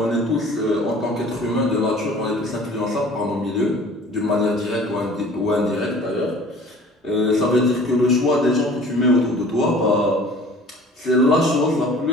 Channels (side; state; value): both; normal; correlation 0.47